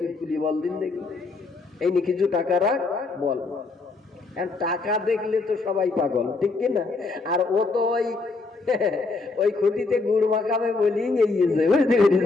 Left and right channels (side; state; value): right; quieter; 3.8 dB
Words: তুলি বল দিন দেখি, এই নিয়ে কিছু টাকা রাখ বল। টাকা দেখলে তো সবাই পাগল, ঠিক কিনা? আর ও তো ওই খুঁটিতে গুড় মাখাবে বলি গিয়েছে, বুঝতে